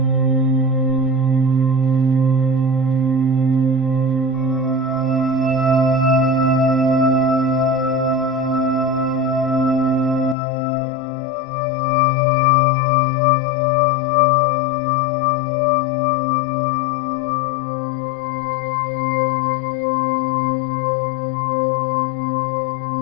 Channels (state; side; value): drops out; right; at 10.4 s